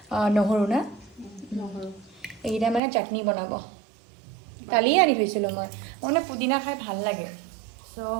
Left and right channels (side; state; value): left; drops out; at 2.8 s